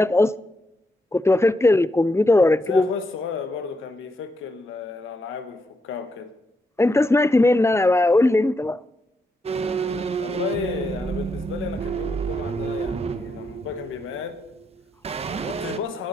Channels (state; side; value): normal; both; correlation 0.82